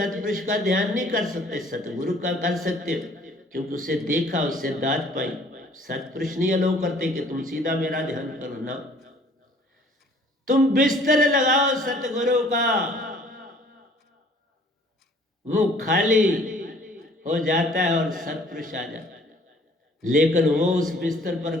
का ध्यान नहीं कर सकते, सतगुरु का कर सकते हो, क्योंकि उसे देखा, उससे दाद पाई। सतपुरुष नहीं अलो करते कि तुम सीधा मेरा ध्यान करो ना। तुम बिस्तर लगाओ सतगुरु का, वो खाली हो जाता है और सतपुरुष आ जाता है। लेकिन वो उस बिस्तर पर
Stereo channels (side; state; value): both; normal; correlation 0.55